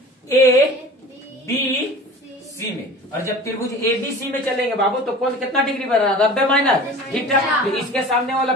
A B C में, और जब त्रिभुज ABC में चलेंगे बाबू तो कौन कितना डिग्री बन रहा है 90 माइनस थीटा। तो इसके सामने वाला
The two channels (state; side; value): normal; both; correlation 0.40